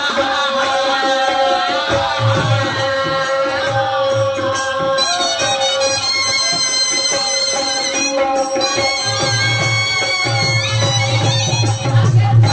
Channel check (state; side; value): identical; both; correlation 1.00